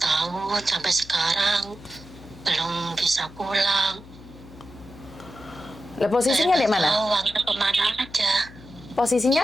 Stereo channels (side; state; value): left; noise; hum, 19 dB below the sound